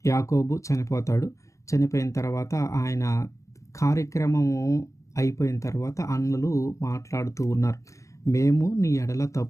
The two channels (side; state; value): right; late; 0.15 ms